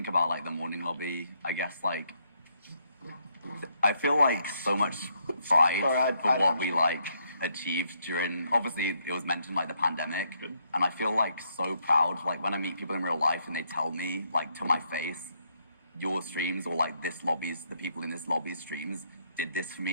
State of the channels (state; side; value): inverted; both; correlation -0.74